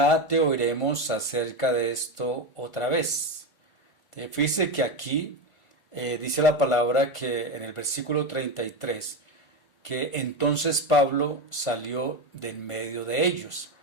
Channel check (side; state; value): right; late; 1.8 ms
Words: te oiremos acerca de esto otra vez. Fíjese que aquí dice la palabra que en el versículo 33, que entonces Pablo salió de en medio de ellos.